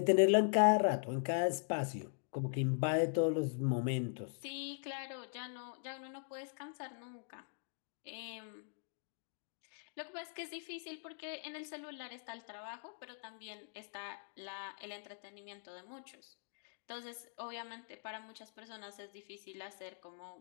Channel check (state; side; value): silent; right; digital silence